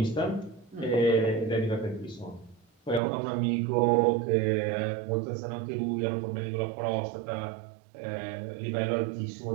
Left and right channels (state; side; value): drops out; left; at 3.0 s